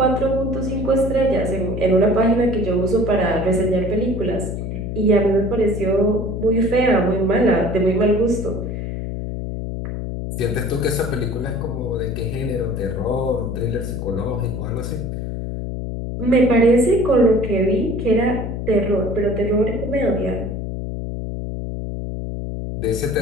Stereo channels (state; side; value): noise; left; hum, 5 dB below the sound